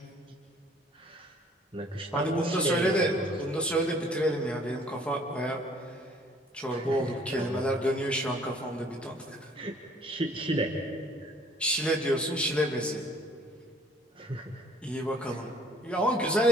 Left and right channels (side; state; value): both; normal; correlation 0.57